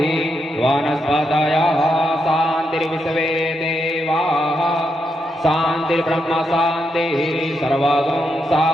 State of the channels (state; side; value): normal; both; correlation 0.82